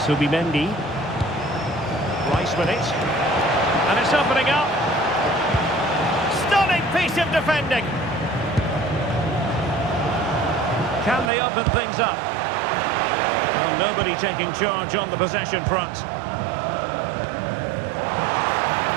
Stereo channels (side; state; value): left; drops out; at 11.3 s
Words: Subimendi. Rice with it. And it's opening up. Stunning piece of defending. Can they open things up? Well, nobody taking charge on the possession front.